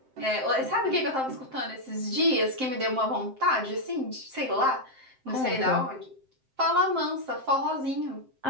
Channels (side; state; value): left; late; 7.6 ms